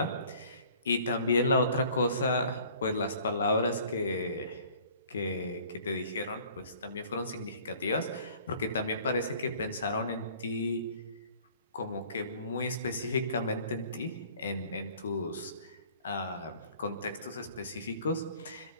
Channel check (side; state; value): both; inverted; correlation -0.52